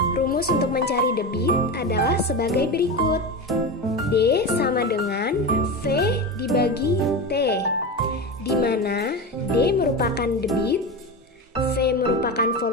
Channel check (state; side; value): normal; both; correlation 0.22